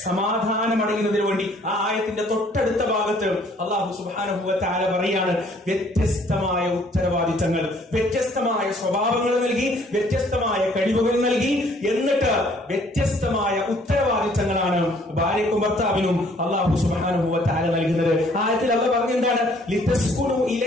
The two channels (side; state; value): both; normal; correlation 0.60